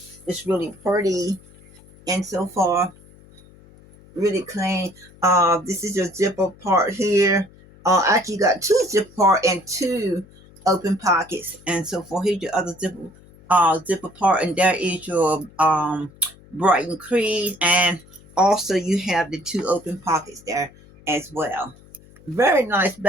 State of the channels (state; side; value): noise; left; hum, 24 dB below the sound